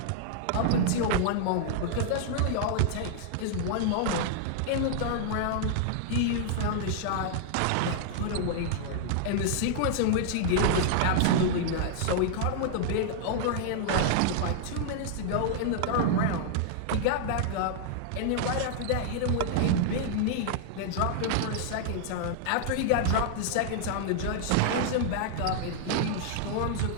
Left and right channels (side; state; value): both; different; correlation -0.01